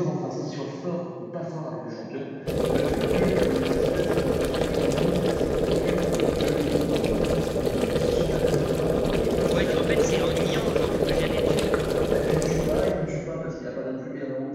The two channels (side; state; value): both; identical; correlation 1.00